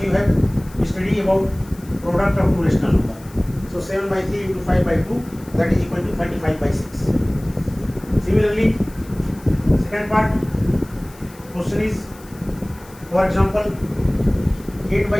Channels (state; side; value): noise; left; hiss, 23 dB below the sound